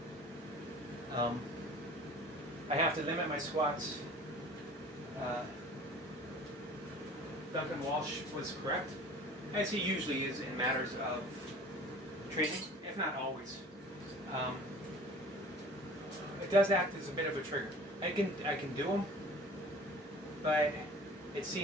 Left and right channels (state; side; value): normal; both; correlation 0.45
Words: I have to limit my squats. Duncan Walsh was correct, as he usually is in matters of training, if not always. It does act as a bit of a trigger. I can do them, but it